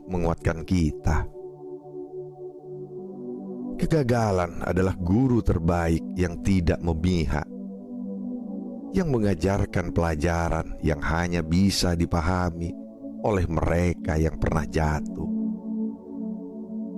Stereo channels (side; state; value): both; identical; correlation 1.00